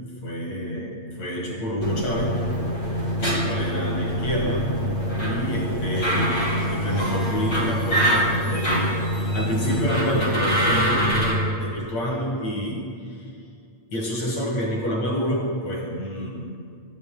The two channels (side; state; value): right; late; 8.7 ms